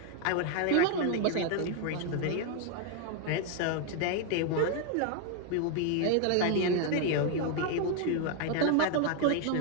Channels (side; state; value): both; different; correlation 0.01